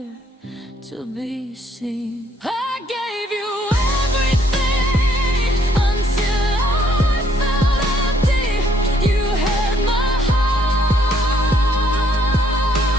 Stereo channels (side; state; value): both; normal; correlation 0.67